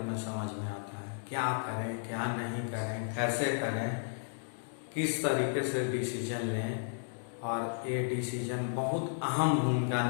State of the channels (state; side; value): silent; right; digital silence